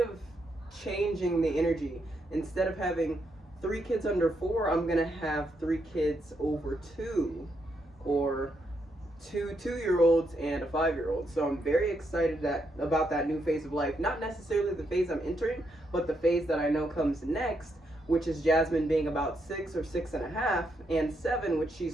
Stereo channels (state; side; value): normal; both; correlation 0.79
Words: changing the energy. Instead of having 3 kids under 4, I'm going to have 3 kids over 2, or 2 2-year-olds and a 5-year-old. So I'm very excited about that new phase of life. Not necessarily the phase I'm entering, but the phase that I know comes next, which is Jasmine being about 6 or 6.5, and 7, which